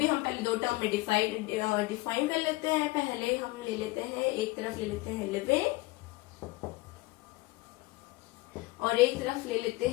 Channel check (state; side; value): quieter; right; 21.5 dB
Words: हम पहले दो टर्म में डिफाइन कर लेते हैं। पहले हम ले लेते हैं, एक तरफ ले लेते हैं लिविंग और एक तरफ ले लेते